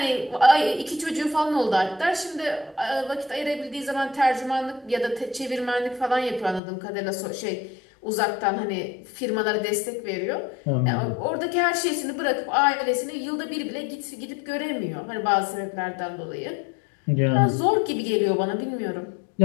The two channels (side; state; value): right; drops out; at 6.6 s